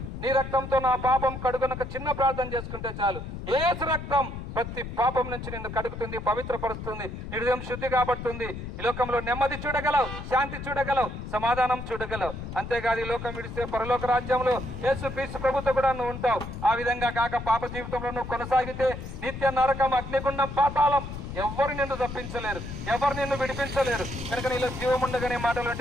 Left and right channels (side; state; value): left; noise; rumble, 8 dB below the sound